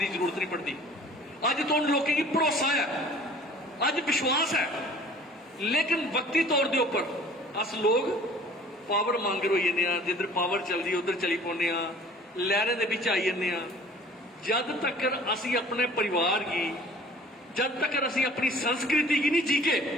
जरूरत नहीं पड़ती। अज तो उन लोगों की भरोसा है, अज विश्वास है, लेकिन वक्ती तौर के उपर अस लोग पावर मांगर हो जाने, जिधर पावर चलती उधर चली पाने, लहरें दे विच आई जाने। जद तक असी अपने परिवार की, जब तक असी अपनी संस्कृति की नहीं जीके,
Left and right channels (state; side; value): normal; both; correlation 0.49